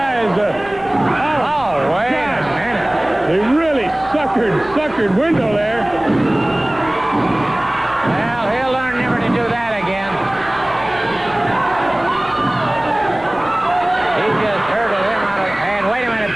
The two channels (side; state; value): right; noise; rumble, 22 dB below the sound